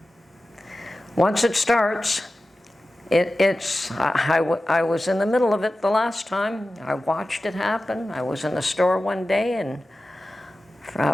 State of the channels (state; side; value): normal; both; correlation 0.95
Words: once it starts, I was in the middle of it the last time. I watched it happen. I was in the store one day, and